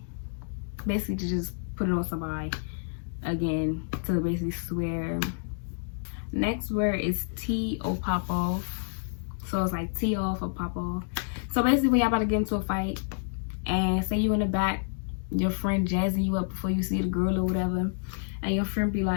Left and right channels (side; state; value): right; silent; digital silence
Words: Basically to just put it on somebody, again, to basically swear. Next word is tee or pop off. So it's like tee off or pop off. So basically when y'all about to get into a fight and say you in the back, your friend jazzing you up before you see the girl or whatever, and your friend be